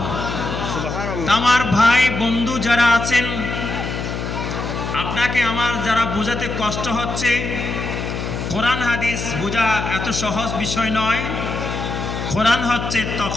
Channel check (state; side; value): noise; left; hum, 4 dB below the sound